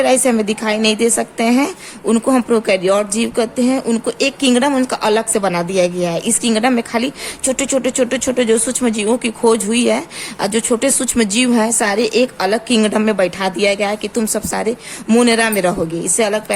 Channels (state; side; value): identical; both; correlation 1.00